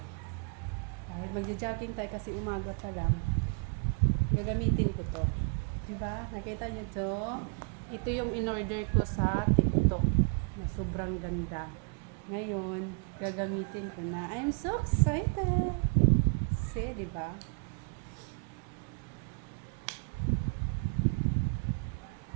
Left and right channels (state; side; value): quieter; left; 36.9 dB